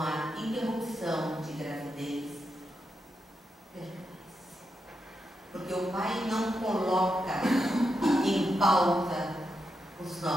a interrupção de gravidez, perdoe-se. Porque o Pai não coloca em pauta os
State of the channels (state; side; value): normal; both; correlation 0.85